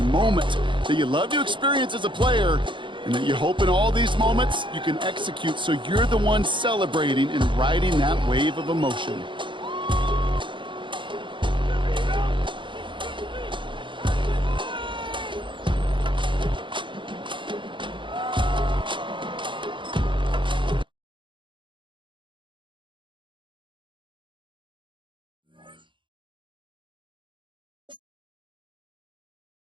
moment that you love to experience as a player, and that you hope in all these moments you can execute so you're the one celebrating and riding that wave of emotion.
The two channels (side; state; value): left; late; 0.24 ms